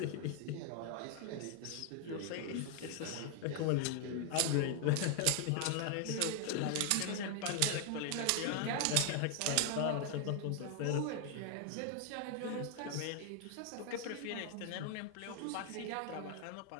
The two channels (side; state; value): both; different; correlation 0.00